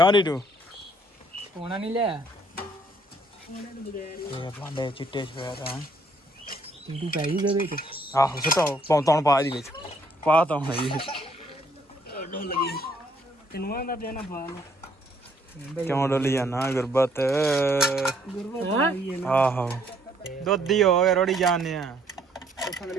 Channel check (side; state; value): both; normal; correlation 0.66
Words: T2 ਸੋਨਾ ਨਹੀਂ ਲਿਆ ਭਾਂਡੇ ਚਿੱਟੇ ਸਵੇਰ ਤਾਂ T2 ਪੈ ਜੂਗਾ ਵਿੱਚ। ਆਹੋ ਸੁਟਾਓ ਪੌਂਤੌਣ ਪਾ ਇਹਦੇ ਵਿੱਚ ਪਾ ਤਾਂ ਹੁਣ ਜੀ ਕਿਨੂਆਂ ਦਾ ਦੇਣਾ ਪਾ ਲੋ ਕਿਉਂ ਡੋਲੀ ਜਾਣਾ ਗੁਰਬਤ ਆਹੋ ਦੁੱਧੀ ਹੋ ਗਏ ਰੋੜੀ ਜਾਣੇ ਆ